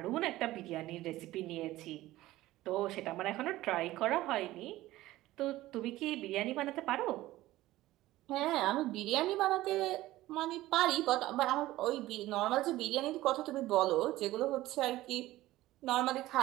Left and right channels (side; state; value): left; quieter; 16.5 dB